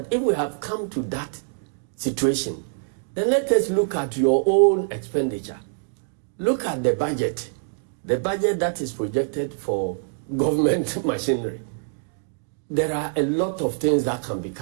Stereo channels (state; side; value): silent; left; digital silence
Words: if we have come to that situation, then let us look at your own expenditure. Look at the budget that is projected for government machinery. There are a lot of things that can be